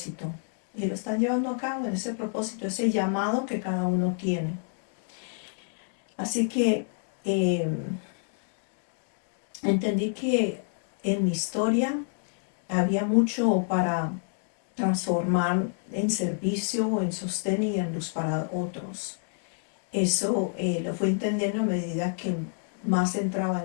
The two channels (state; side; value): silent; right; 57 dB below the other